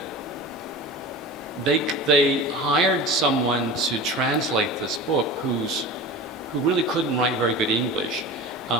they hired someone to translate this book who really couldn't write very good English.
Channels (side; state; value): both; normal; correlation 0.33